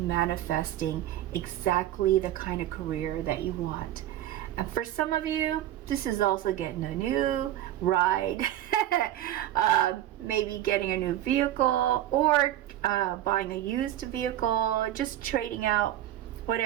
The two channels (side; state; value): left; quieter; 13.1 dB